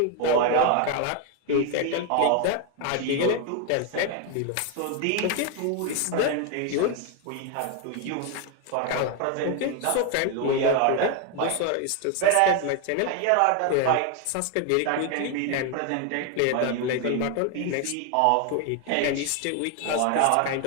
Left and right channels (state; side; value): different; both; correlation 0.01